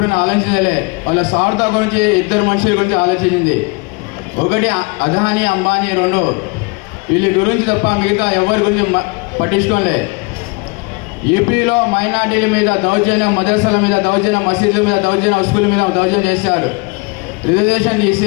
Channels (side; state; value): right; quieter; 28.9 dB